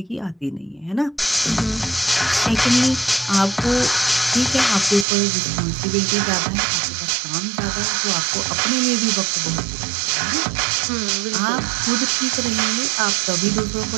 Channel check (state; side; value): drops out; left; at 5.1 s